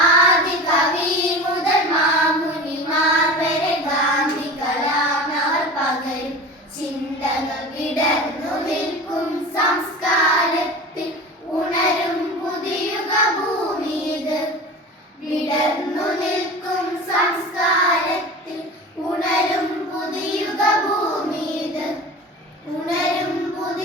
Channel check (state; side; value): normal; both; correlation 0.34